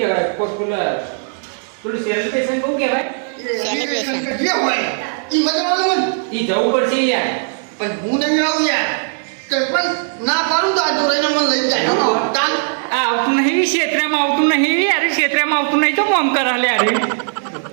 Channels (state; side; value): silent; left; digital silence